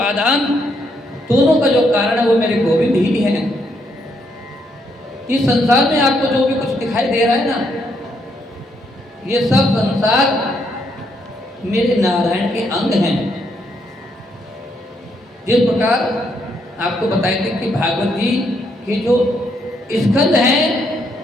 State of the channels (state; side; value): normal; both; correlation 0.75